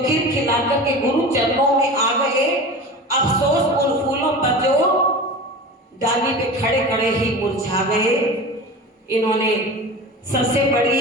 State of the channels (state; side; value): normal; both; correlation 0.33